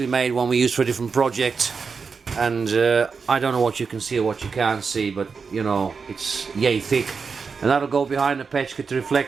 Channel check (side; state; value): left; quieter; 5.3 dB